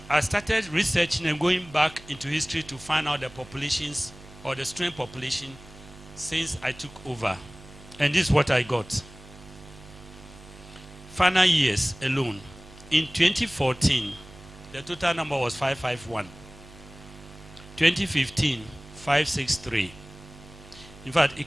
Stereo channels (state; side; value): noise; right; hum, 19 dB below the sound